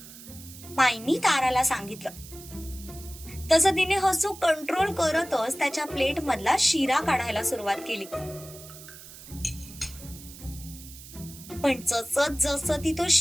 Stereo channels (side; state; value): right; noise; hiss, 16 dB below the sound